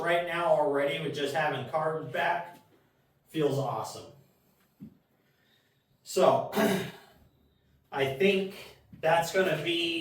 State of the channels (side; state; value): both; identical; correlation 1.00